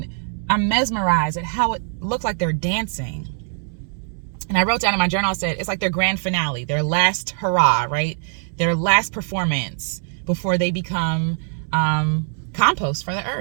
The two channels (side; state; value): left; silent; 56 dB below the other